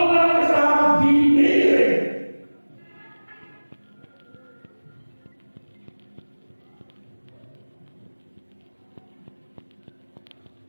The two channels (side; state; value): both; inverted; correlation -1.00